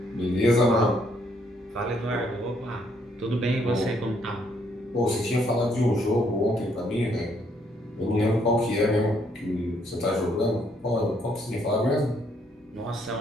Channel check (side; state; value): both; normal; correlation 0.70